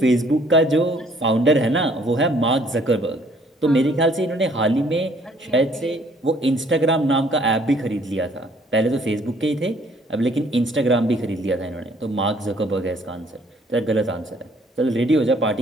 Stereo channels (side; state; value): both; normal; correlation 0.61